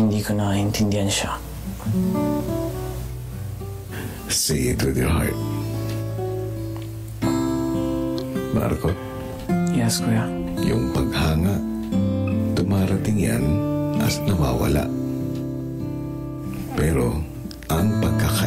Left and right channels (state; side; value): identical; both; correlation 1.00